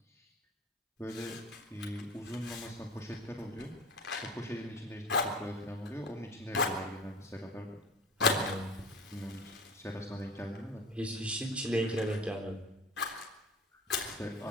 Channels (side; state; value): both; normal; correlation 0.35